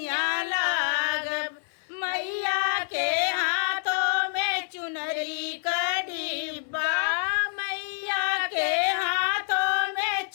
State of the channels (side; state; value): right; silent; digital silence